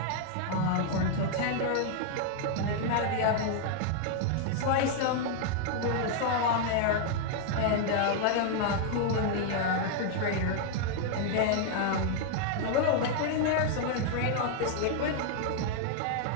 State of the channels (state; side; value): different; both; correlation 0.00